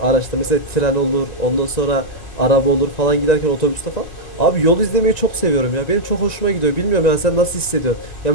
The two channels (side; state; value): right; late; 1.9 ms